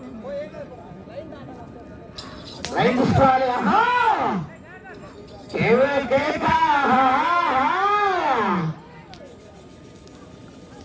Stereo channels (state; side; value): identical; both; correlation 1.00